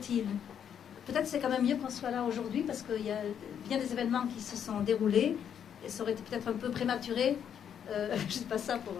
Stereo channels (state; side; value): quieter; right; 8.6 dB